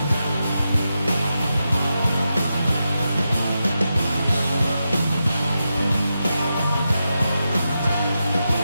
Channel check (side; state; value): both; inverted; correlation -0.88